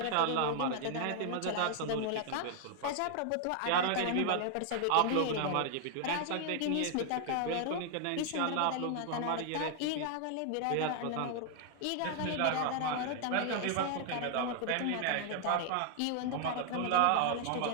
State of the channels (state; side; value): different; both; correlation 0.00